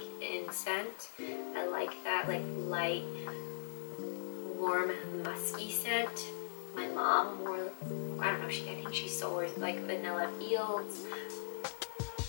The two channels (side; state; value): right; silent; digital silence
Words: in scent. I like that like light, warm, musky scent. My mom wore, I don't know, I think she still wears like Vanilla Fields.